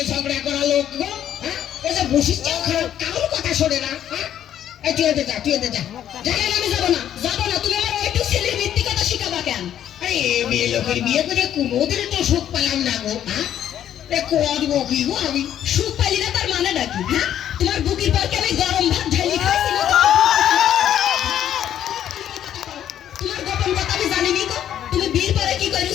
ঝগড়া করা লোক গো, হ্যাঁ? এই যে বসিস চাও খারাপ কারোর কথা শোনে না, হ্যাঁ? এই তুই এতে যা, তুই এতে যা। কেন আমি যাবো না? যাবো না, তুমি আমার ওইটুক ছেলের মিথ্যি কথা শিখাবা কেন? আরে এই মেয়ে লোকের বিয়ে করে কোনোদিন তো সুখ পেলাম না গো, হ্যাঁ? এ করবো কি গো আমি? সুখ পাইলি না তার মানে নাকি? হ্যাঁ, তোমার বুকের পর আমি গরম ভাত ঢালি খাইছি না? তোমার গোপন কথা আমি জানি নি গো। তুমি বিয়ের পরে কি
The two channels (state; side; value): quieter; right; 10.6 dB